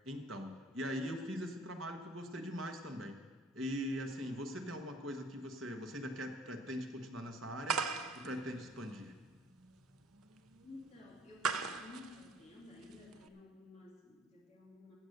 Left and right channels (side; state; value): both; normal; correlation 0.55